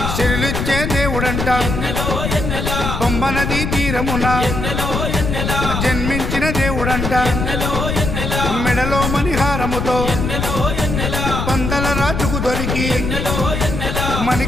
శిరులిచ్చే దేవుడంట బొమ్మ నదీ తీరమున జన్మించిన దేవుడంట మెడలో మణిహారముతో పందల రాజుకు దొరికి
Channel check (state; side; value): noise; left; rumble, 2 dB below the sound